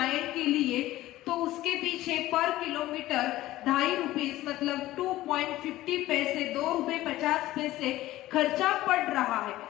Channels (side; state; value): right; quieter; 16.0 dB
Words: के लिए, तो उसके पीछे पर किलोमीटर 2.5 रुपीज मतलब 2.50 पैसे, 2 रुपए 50 पैसे खर्चा पड़ रहा है।